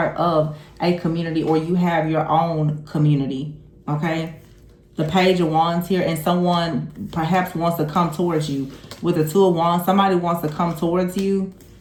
of a community, or you have your own community. Okay, the Page of Wands here, and someone perhaps wants to come towards you. With the Two of Wands, somebody wants to come towards you.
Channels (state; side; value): identical; both; correlation 1.00